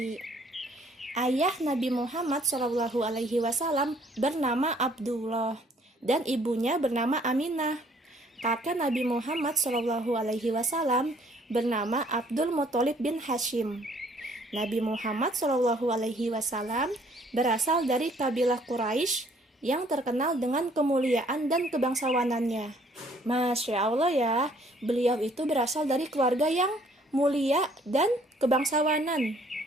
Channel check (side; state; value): both; normal; correlation 0.61